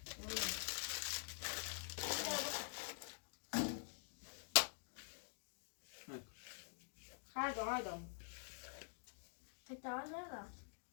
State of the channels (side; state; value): right; silent; digital silence